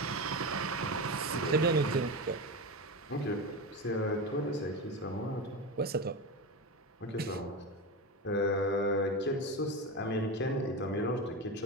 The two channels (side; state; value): both; normal; correlation 0.20